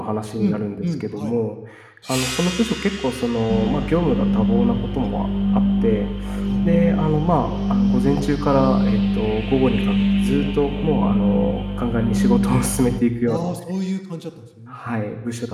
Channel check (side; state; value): both; identical; correlation 1.00